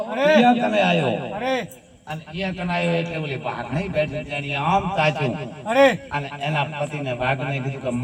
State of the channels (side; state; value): both; identical; correlation 1.00